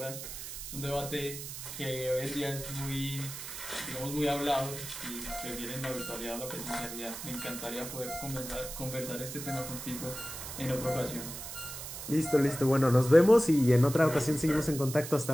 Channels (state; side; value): noise; right; hiss, 9 dB below the sound